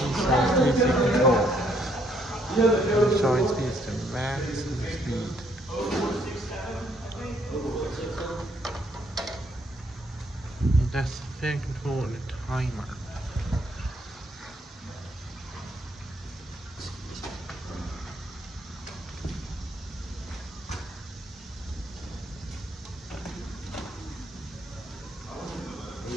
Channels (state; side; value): normal; both; correlation 0.69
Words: control. Showing speeds to max speed. That's the fan control and the timer.